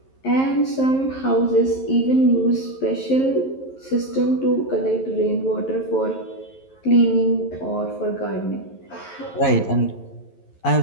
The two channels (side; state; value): right; late; 11 ms